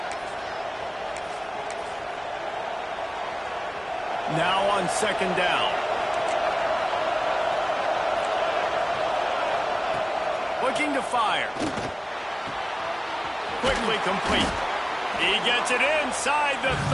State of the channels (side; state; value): both; identical; correlation 1.00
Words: Now on second down. Looking to fire. Quickly complete. He gets it inside the